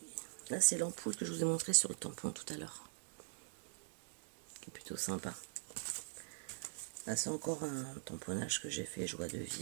là c'est l'ampoule que je vous ai montré sur le tampon tout à l'heure. Qui est plutôt sympa. Là c'est encore un tamponnage que j'ai fait, joie de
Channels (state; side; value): silent; left; digital silence